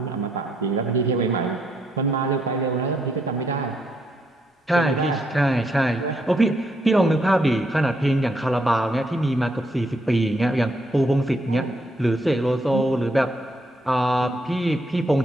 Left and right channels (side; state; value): both; normal; correlation 0.75